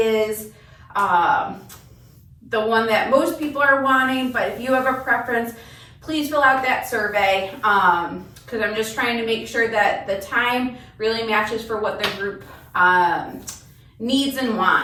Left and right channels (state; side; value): identical; both; correlation 1.00